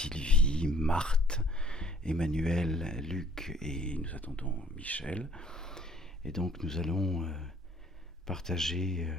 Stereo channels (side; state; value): both; normal; correlation 0.57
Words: Marthe, Emmanuel, Luc et nous attendons Michel. Et donc nous allons partager